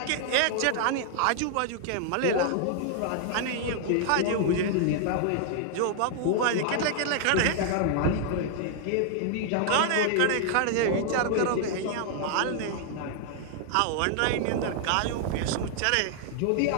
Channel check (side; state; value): both; different; correlation 0.00